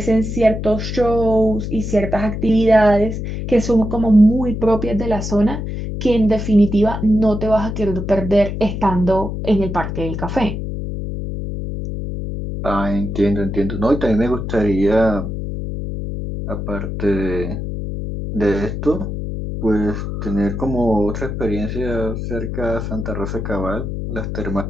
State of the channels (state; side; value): noise; left; hum, 5 dB below the sound